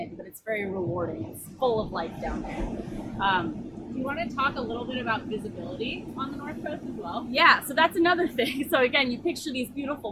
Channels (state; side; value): identical; both; correlation 1.00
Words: but it's very rewarding. It's full of life down there. You want to talk a little bit about visibility on the North Coast as well? Yeah, so that's another thing. So again, you picture these